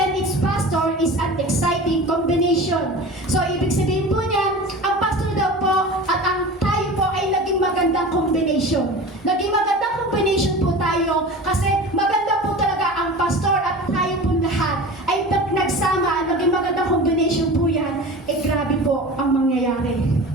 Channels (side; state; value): both; normal; correlation 0.35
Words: its pastor is an exciting combination. So, ibig sabihin po niyan, ang pastor daw po at ang tayo po ay naging magandang combination. Naging magandang combination po tayo kasi maganda po talaga ang pastor at tayo po lahat ay nagsama, naging magandang combination po yan, grabe po ang mangyayari.